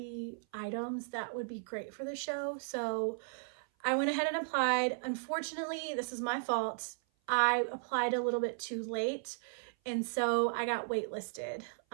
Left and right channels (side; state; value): left; silent; 54 dB below the other